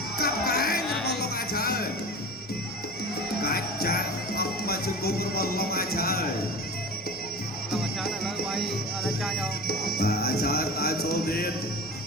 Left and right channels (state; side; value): normal; both; correlation 0.32